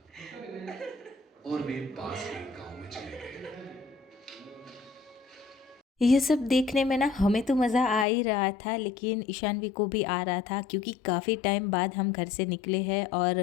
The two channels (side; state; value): right; drops out; at 8.1 s